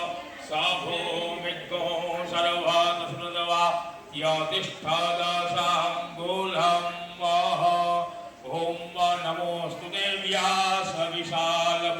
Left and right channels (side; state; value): both; identical; correlation 1.00